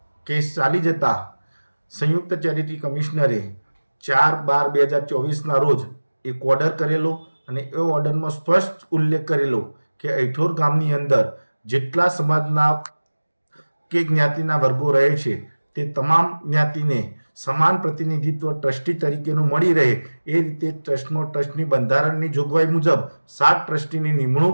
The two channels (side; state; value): both; inverted; correlation -1.00